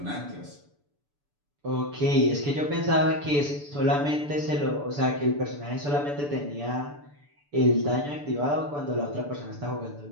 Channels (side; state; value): left; late; 6.9 ms